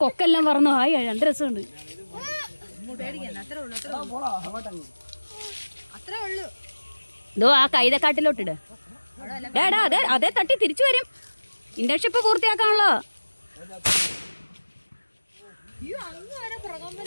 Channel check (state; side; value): inverted; both; correlation -1.00